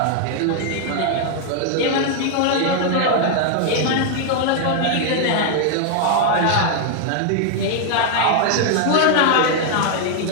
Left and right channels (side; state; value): both; different; correlation 0.00